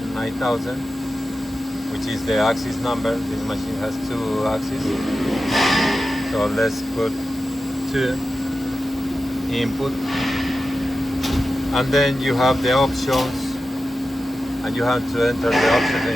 which is the axis number. This machine has 2 axes. So let's put 2 input. And then you have the options, and you have to enter the options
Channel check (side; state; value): both; normal; correlation 0.92